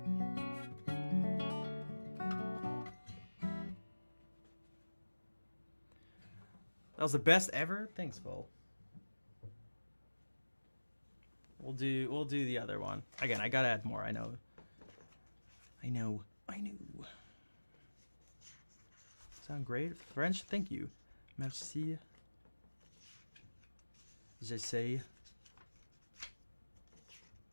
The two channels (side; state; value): both; inverted; correlation -1.00